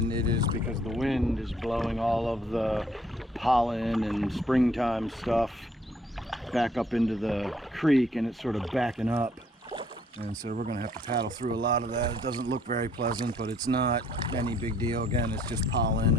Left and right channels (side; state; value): both; normal; correlation 0.64